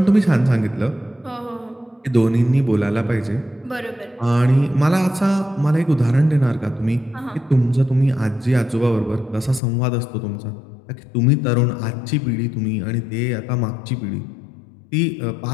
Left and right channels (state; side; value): drops out; right; at 9.6 s